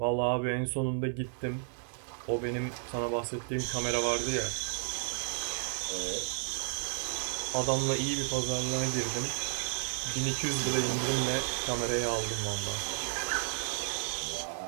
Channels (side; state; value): left; silent; digital silence